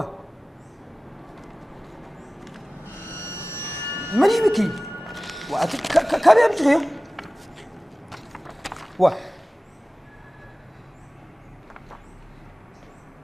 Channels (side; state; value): both; normal; correlation 0.97